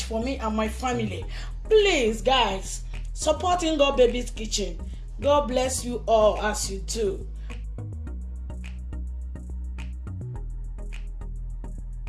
for me and my family. Please, guys, supporting God Baby's Kitchen. God bless you all as you do.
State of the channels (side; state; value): both; identical; correlation 1.00